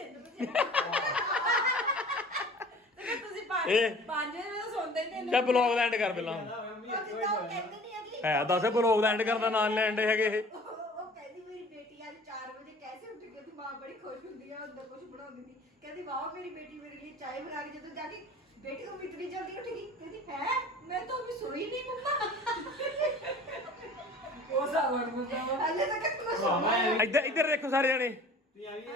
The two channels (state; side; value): normal; both; correlation 0.46